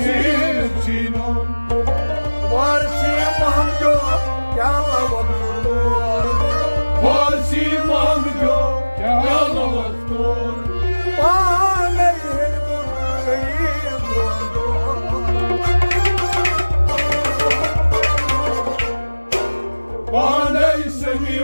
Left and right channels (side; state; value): both; inverted; correlation -1.00